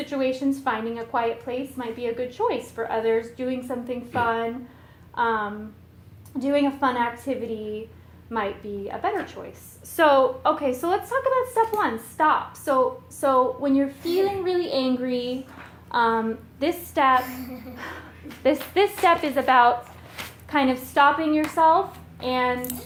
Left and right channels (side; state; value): both; identical; correlation 1.00